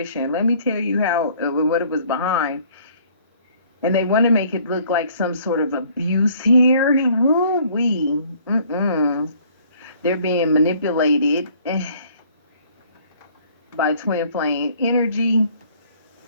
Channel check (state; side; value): inverted; both; correlation -0.58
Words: Let me tell you what it was behind. And they want to make it look like some sort of abuse here. They're being manipulated by twin flame energy.